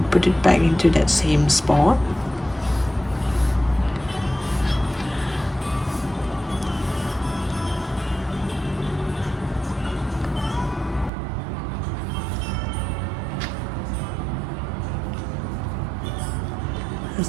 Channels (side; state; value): left; drops out; at 11.1 s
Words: put it back into that same spot.